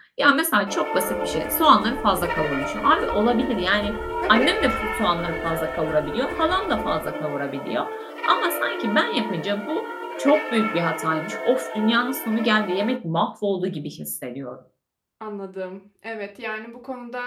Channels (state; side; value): identical; both; correlation 1.00